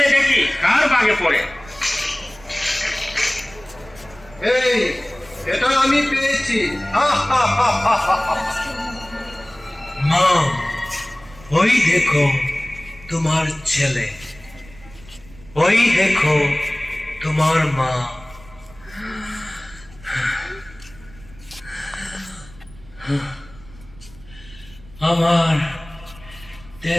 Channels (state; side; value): noise; right; rumble, 22 dB below the sound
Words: দেখি কার বাগে পড়ে। এই, এটা আমি পেয়েছি। মা, ওই দেখো তোমার ছেলে, ওই দেখো তোমার মা। আমার